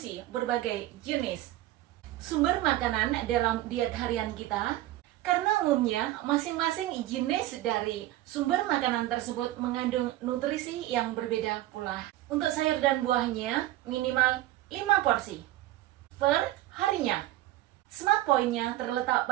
berbagai jenis sumber makanan dalam diet harian kita, karena umumnya masing-masing jenis dari sumber makanan tersebut mengandung nutrisi yang berbeda pula. Untuk sayur dan buahnya minimal 5 porsi per harinya. Smart point-nya terletak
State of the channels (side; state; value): left; quieter; 15.4 dB